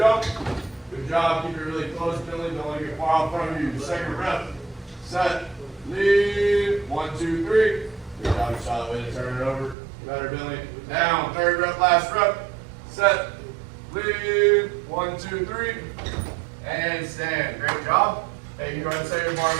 Good job. Keep it really close, Billy. Don't let it get far in front of you. Second rep. Set. Lean. 1, 2, 3. Good job. You saw the way to turn it over. Better, Billy. Down. Third rep, last rep. Set. Lean. 1, 2, 3. And stand. Great job. Hey, you go ahead and set your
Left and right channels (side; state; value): left; drops out; at 9.8 s